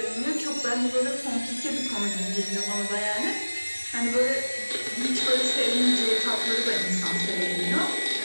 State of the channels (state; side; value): inverted; both; correlation -1.00